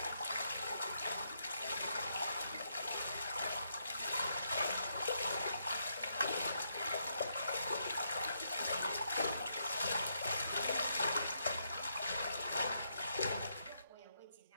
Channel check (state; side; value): inverted; both; correlation -0.78